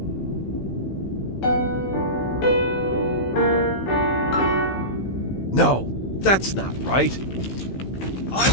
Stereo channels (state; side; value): late; right; 15 ms